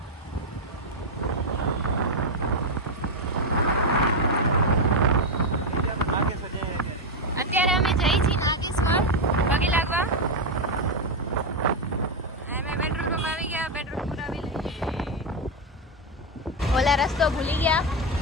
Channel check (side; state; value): both; normal; correlation 0.04